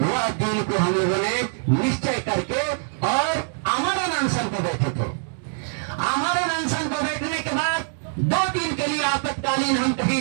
दिन को हम लोगों ने निश्चय करके और आमरण अनशन को बैठे थे। आमरण अनशन को बैठने के बाद 2 दिन के लिए आपातकालीन हम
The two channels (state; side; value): silent; left; 63 dB below the other